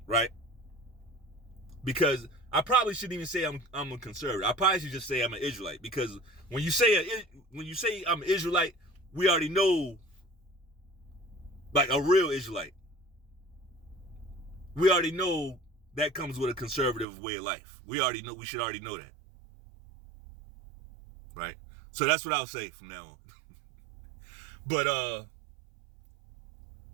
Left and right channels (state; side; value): drops out; left; at 17.1 s